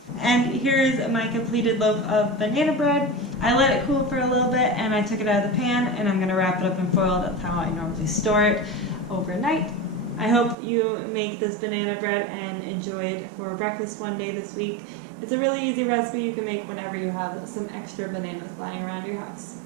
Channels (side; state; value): left; drops out; at 10.6 s